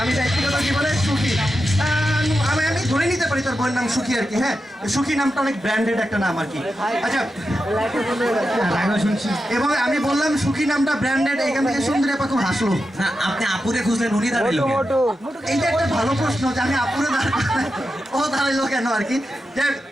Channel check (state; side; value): normal; both; correlation 0.89